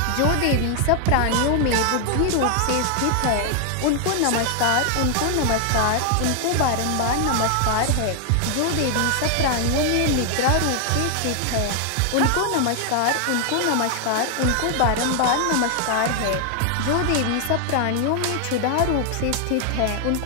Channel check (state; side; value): different; both; correlation 0.00